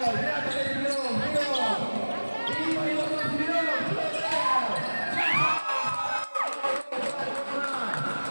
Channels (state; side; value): inverted; both; correlation -1.00